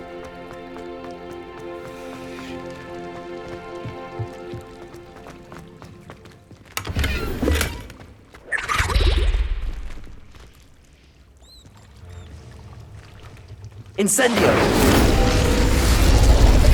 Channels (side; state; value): both; identical; correlation 1.00